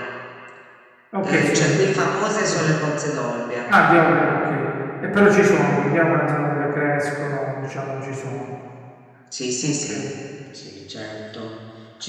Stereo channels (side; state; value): both; identical; correlation 1.00